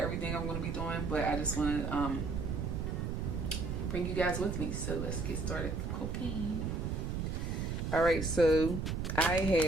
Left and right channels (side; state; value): right; noise; rumble, 2 dB below the sound